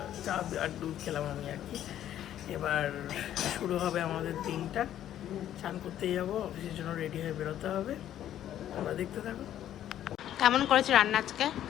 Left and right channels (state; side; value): quieter; right; 11.5 dB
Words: চা আর দুধ খেলাম আমি আর কি। এবার শুরু হবে আমাদের দিনটা। চান করতে যাবো, অফিসের জন্য রেডি হয়ে বেরোতে হবে। তোমরা দেখতে থাকো। কেমন করেছে রান্না আজকে?